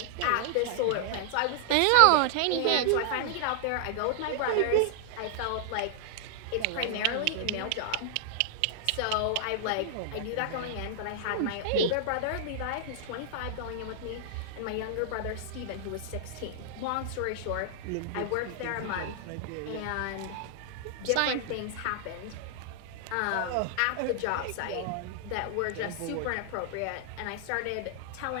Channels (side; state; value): both; different; correlation -0.01